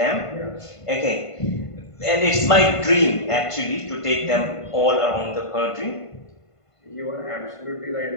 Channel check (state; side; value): late; right; 1.5 ms